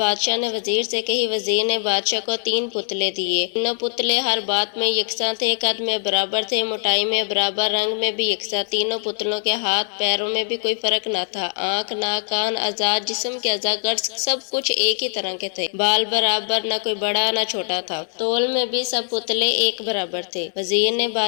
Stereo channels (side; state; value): right; silent; 62 dB below the other